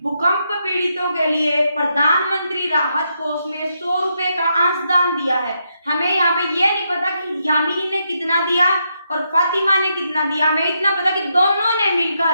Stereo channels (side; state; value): both; inverted; correlation -0.80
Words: भूकंप पीड़ितों के लिए प्रधानमंत्री राहत कोष में 100 रुपए का अंशदान दिया है। हमें यहाँ पे ये नहीं पता कि यामिनी ने कितना दिया और फातिमा ने कितना दिया, हमें इतना पता कि दोनों ने